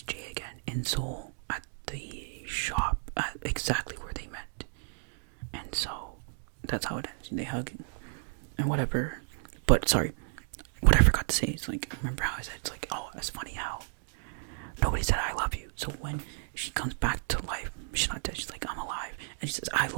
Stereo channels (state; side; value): silent; left; digital silence